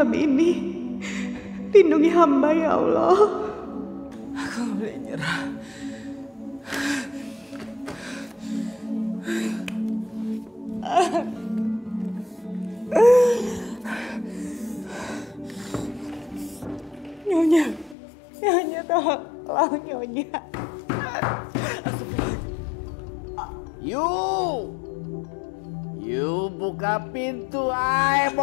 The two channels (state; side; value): drops out; right; at 17.9 s